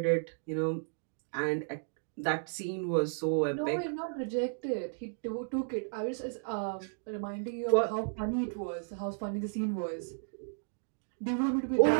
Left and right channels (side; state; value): left; silent; digital silence